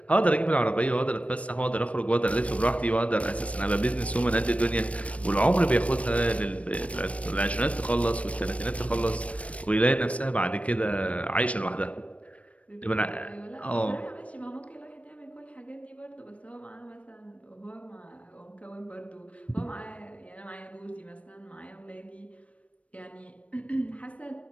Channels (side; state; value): right; late; 0.064 ms